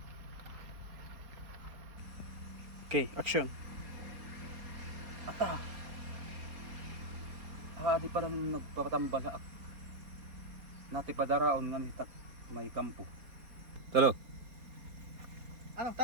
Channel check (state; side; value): late; left; 4.2 ms